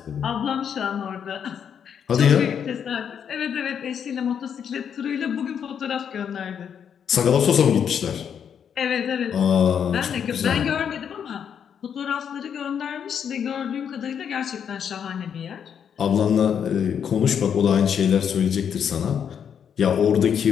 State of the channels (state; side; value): quieter; right; 7.9 dB